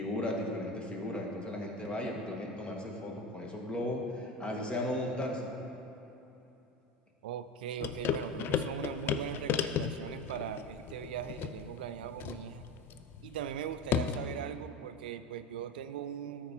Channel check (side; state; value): both; normal; correlation 0.26